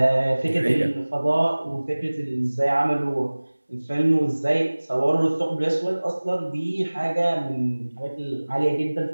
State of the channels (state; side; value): inverted; both; correlation -1.00